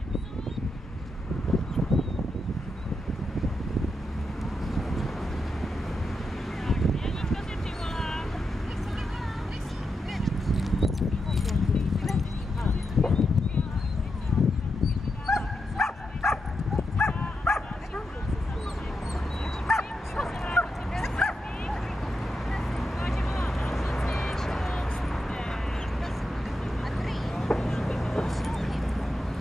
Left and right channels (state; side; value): normal; both; correlation 0.86